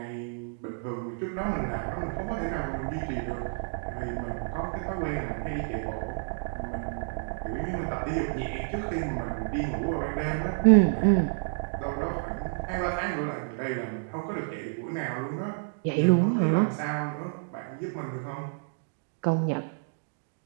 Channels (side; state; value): left; silent; digital silence